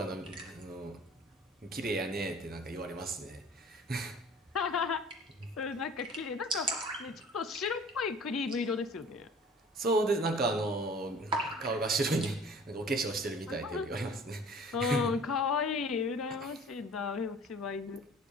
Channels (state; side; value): normal; both; correlation 0.47